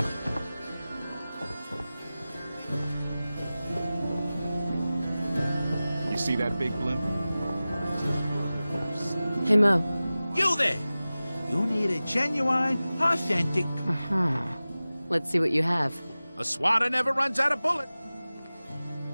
You see that big blimp? Hey, Mo. You there! You need a genuine, authentic... Uh-huh. Let's see what you have. A swatter never runs out of bullets.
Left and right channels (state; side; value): inverted; both; correlation -0.97